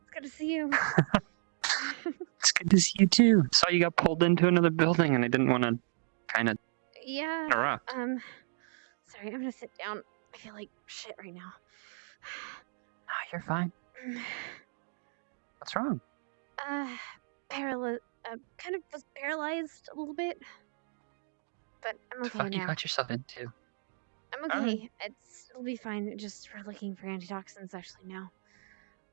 good to see you. It's good to see you too. Saw you got pulled into another building, and I didn't want to kind of Yeah. interrupt. Sorry, I'm gonna sit down. I feel like shit right now. Oh, you're fine. What's wrong? Kind of was paralyzed a little bit, but I'm What the okay fuck you now. got yourself into? I'm okay. It'll be fine. Just for looking for antitoxins actually now.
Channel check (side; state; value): left; silent; digital silence